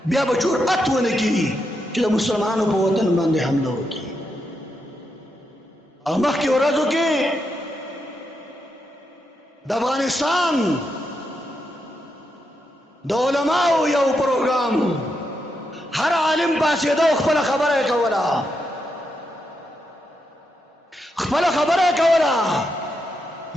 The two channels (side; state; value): both; normal; correlation 0.83